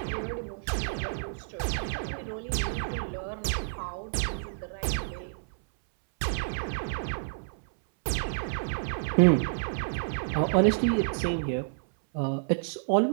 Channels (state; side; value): silent; left; 58 dB below the other